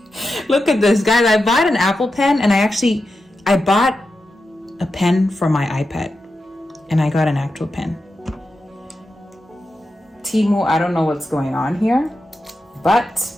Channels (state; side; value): normal; both; correlation 0.89